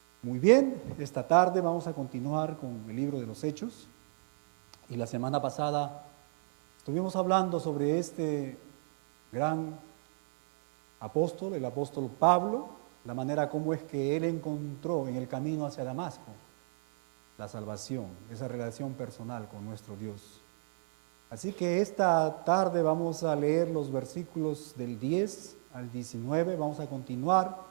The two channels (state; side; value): silent; left; 56 dB below the other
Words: Muy bien, esta tarde vamos a continuar con el libro de los Hechos. Y la semana pasada estuvimos hablando sobre este gran apóstol, el apóstol Pablo, la manera como es que él encontró en el camino hacia Damasco la salvación, esa relación personal con nuestro Dios. Así que esta tarde vamos a leer los versículos del 10 al 19, vamos a